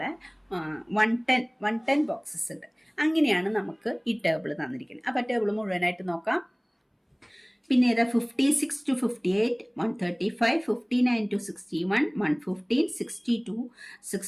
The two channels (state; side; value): identical; both; correlation 1.00